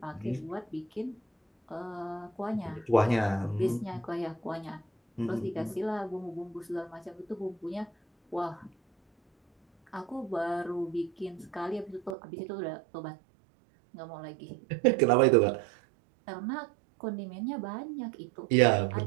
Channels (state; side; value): drops out; left; at 12.2 s